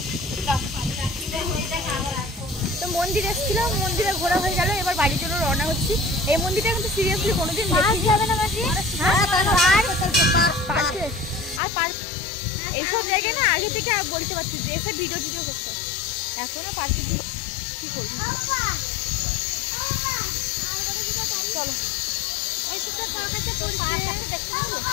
তো মন্দির এসেছিলাম, মন্দিরে ঘোরা হয়ে গেল, এবার বাড়ির জন্য রওনা হচ্ছি। এই মন্দিরটা কিন্তু সিরিয়াসলি কোনোদিন দেখিনি। যাবে না মাসি? আর পার্ক এইসব জায়গায় না আগে থেকে আর বলতে পারছি যে এসে ভিডিও করতে, এখনো পার্কে কি করবি। চলো ওই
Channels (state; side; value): drops out; right; at 11.6 s